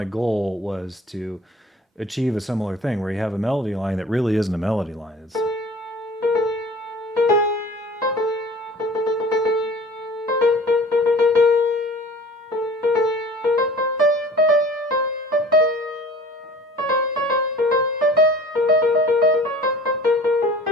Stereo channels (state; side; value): normal; both; correlation 0.45